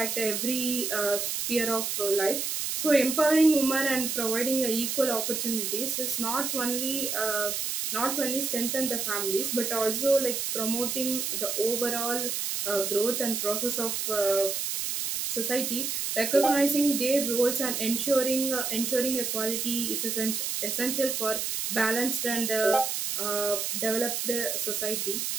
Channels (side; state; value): right; noise; hiss, 1 dB below the sound